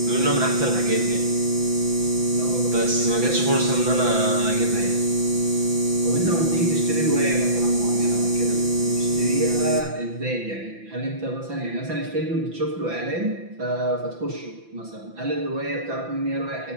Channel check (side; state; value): left; late; 5.9 ms